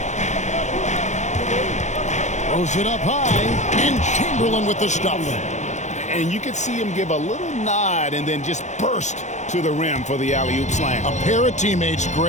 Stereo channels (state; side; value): late; right; 0.34 ms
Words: Throws it up high, and Chamberlain with the stuff. And you could see him give a little nod and then just burst to the rim for the alley-oop slam. A pair of teammates,